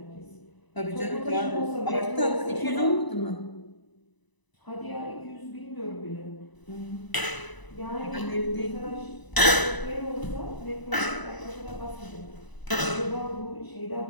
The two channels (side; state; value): right; late; 1.0 ms